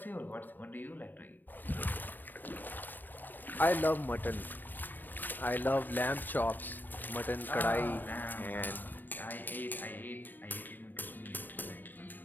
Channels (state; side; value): late; right; 0.089 ms